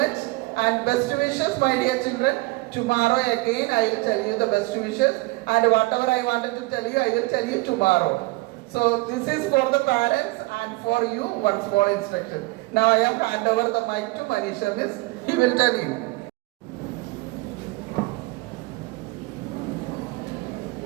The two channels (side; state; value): left; quieter; 23.0 dB